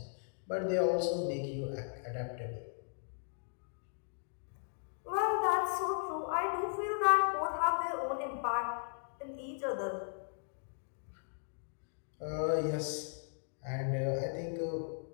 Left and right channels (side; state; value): right; silent; digital silence